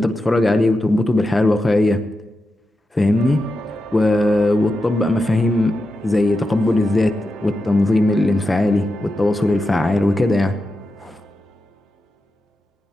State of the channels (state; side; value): normal; both; correlation 0.89